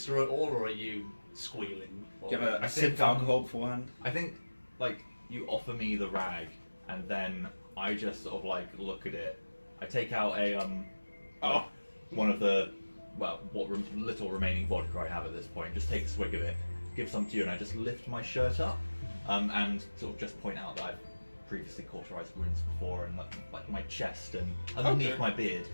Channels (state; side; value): inverted; both; correlation -1.00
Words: through it all, or are you squealing? Do you have I a sip think, of alcohol beforehand? I think, like, you offer me the rag, and then I just sort of like look at it. I take out a one of the what little remaining vodka I have at this point. Just take a swig of it, give some to you, and I just lift my shirt up, and sort of just point out that I've previously cauterized wounds before, and like my chest and underneath Okay. my beard